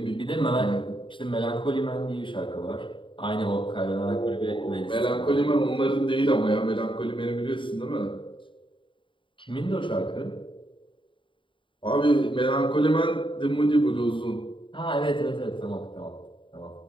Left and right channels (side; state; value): right; late; 0.24 ms